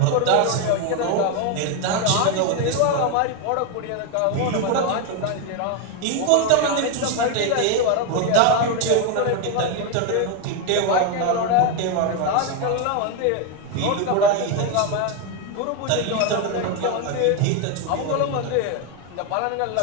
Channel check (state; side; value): different; both; correlation 0.02